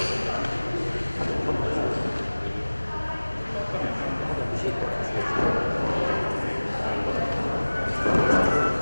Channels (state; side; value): inverted; both; correlation -1.00